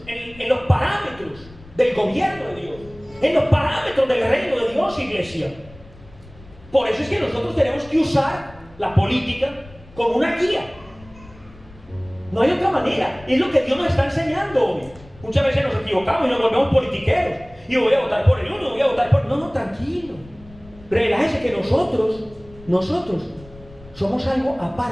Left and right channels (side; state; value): left; noise; rumble, 22 dB below the sound